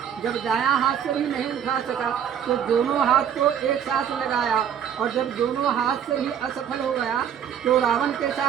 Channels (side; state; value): left; quieter; 8.7 dB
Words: जब दायां हाथ से भी नहीं उठा सका, तो दोनों हाथ को एक साथ लगाया। और जब दोनों हाथ से भी असफल हो गया, तो रावण के